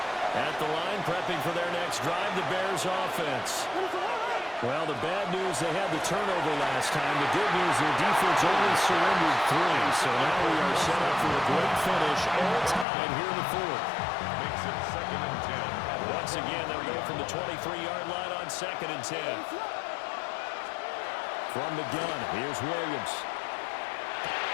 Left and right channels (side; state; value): right; drops out; at 12.9 s